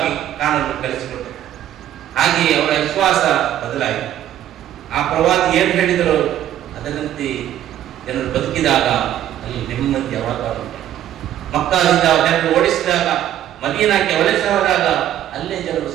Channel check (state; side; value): quieter; left; 11.8 dB